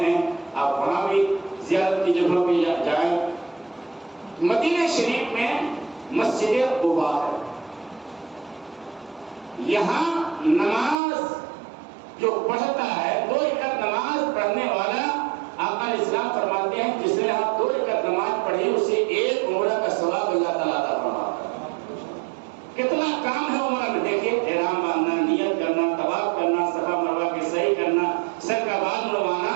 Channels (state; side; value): drops out; left; at 11.0 s